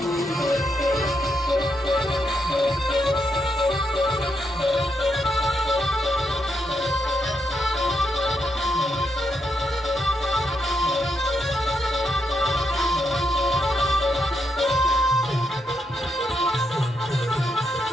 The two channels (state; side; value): normal; both; correlation 0.81